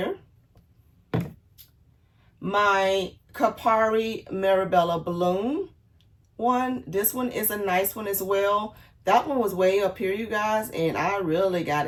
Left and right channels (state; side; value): identical; both; correlation 1.00